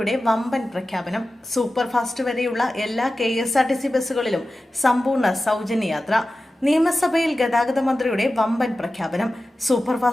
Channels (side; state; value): both; normal; correlation 0.94